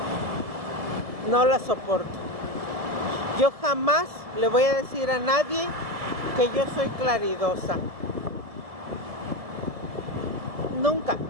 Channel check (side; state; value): left; late; 1.7 ms